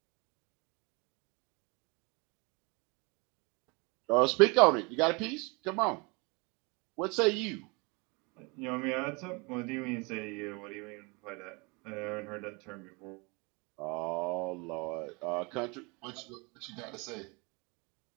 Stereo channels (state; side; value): quieter; left; 28.9 dB